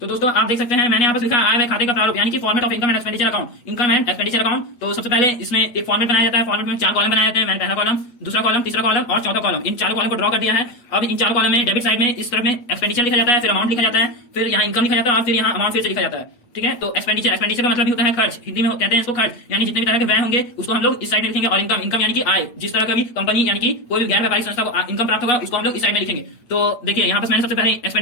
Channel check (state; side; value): late; right; 8.3 ms